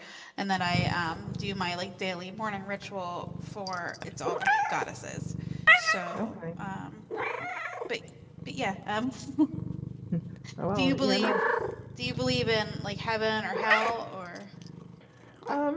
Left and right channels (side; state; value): both; identical; correlation 1.00